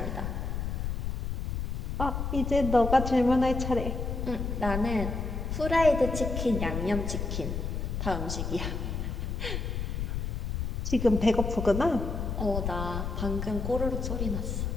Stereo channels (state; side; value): noise; left; rumble, 2 dB below the sound